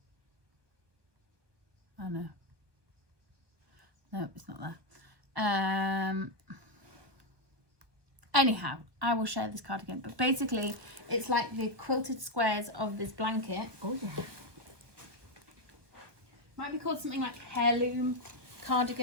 Oh no. No, it's not there. anyhow, I will share this cardigan. But basically, it's like the quilted squares of this blanket. Oh yeah. Might be called something like heirloom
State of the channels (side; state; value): left; late; 1.2 ms